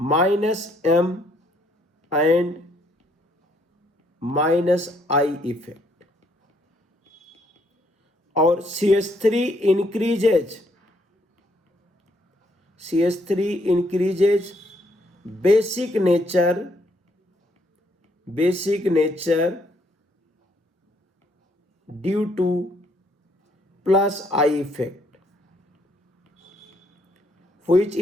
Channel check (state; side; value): normal; both; correlation 0.70